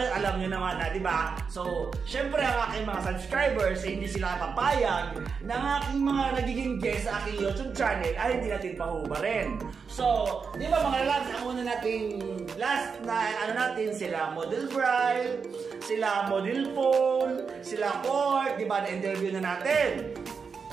alam nyo naman na, di ba? So, syempre ang aking mga subscribers hindi sila papayag na ang aking mga nagiging guest sa aking YouTube channel ay hindi natin pahubarin. So, di ba mga lads, ang una nating last na ano natin, sila Model Bride, sila Model Phone, sila Court, di ba, na-interview na natin.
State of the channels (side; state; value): left; quieter; 5.6 dB